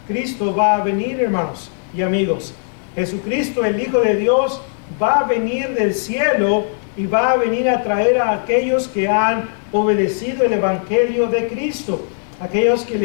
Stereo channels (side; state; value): right; silent; 66 dB below the other